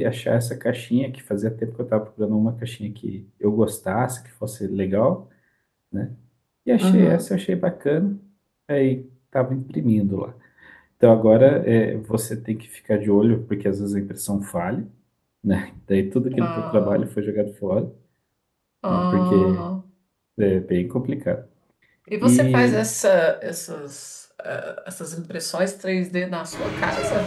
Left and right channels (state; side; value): identical; both; correlation 1.00